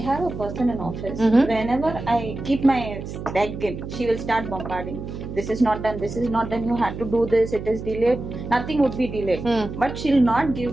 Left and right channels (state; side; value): noise; right; hum, 9 dB below the sound